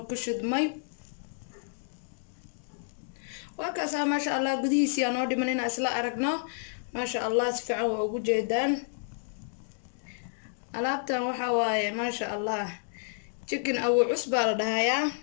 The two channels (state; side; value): silent; right; digital silence